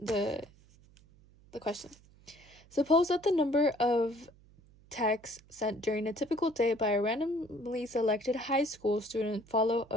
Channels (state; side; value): noise; right; hum, 27 dB below the sound